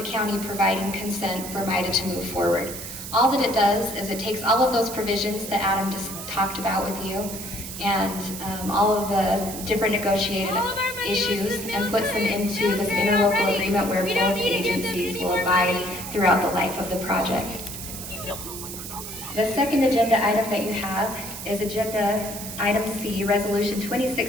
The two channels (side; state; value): right; noise; hiss, 9 dB below the sound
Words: county providing consent for MIDA to move forward. All that it does is it takes all of those provisions that Adam just talked about with you and all of the different negotiated issues and puts them into this interlocal agreement where both agencies will abide throughout the life of the project. The second agenda item that you have is agenda item C, resolution